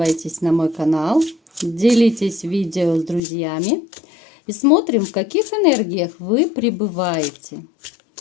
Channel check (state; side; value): drops out; right; at 3.2 s